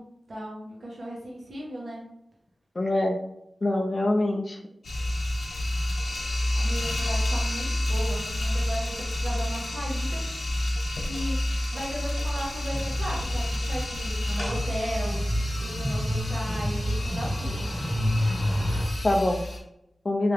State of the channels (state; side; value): normal; both; correlation 0.96